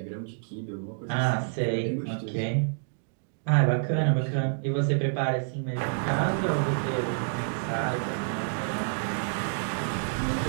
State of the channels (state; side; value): silent; left; digital silence